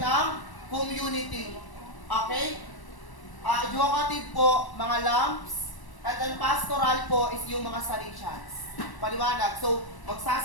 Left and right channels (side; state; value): right; late; 1.0 ms